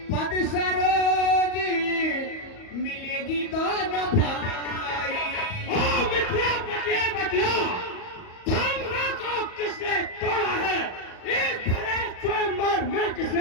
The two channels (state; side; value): late; right; 38 ms